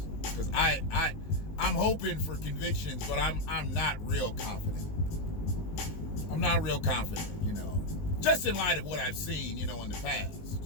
Because I'm hoping for convictions, but I'm not real confident. I'm not real confident, just in light of what I've seen, in the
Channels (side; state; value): right; late; 19 ms